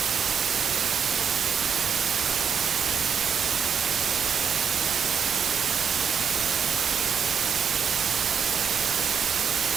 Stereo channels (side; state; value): left; quieter; 7.0 dB